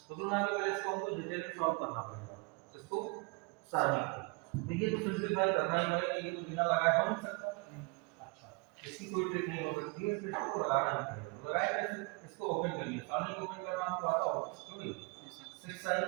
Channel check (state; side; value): quieter; left; 30.0 dB